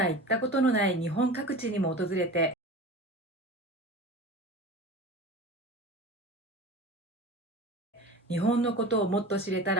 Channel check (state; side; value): normal; both; correlation 0.34